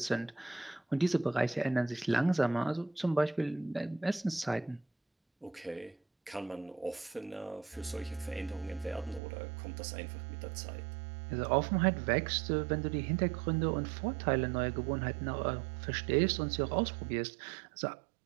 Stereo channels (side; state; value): left; drops out; at 9.2 s